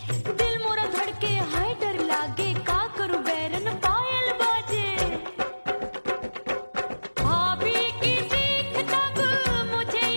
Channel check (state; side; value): inverted; both; correlation -1.00